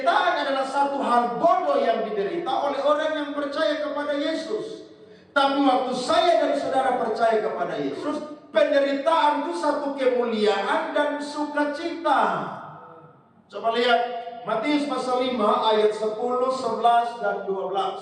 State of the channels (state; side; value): identical; both; correlation 1.00